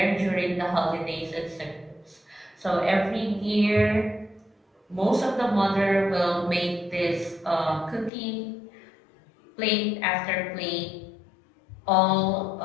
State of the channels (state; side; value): drops out; right; at 8.1 s